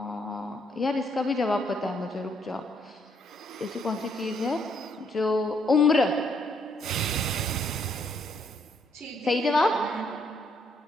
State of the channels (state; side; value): normal; both; correlation 0.71